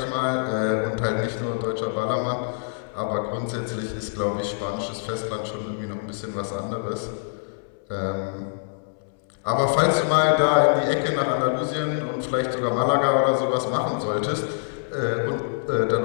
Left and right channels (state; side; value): silent; right; 62 dB below the other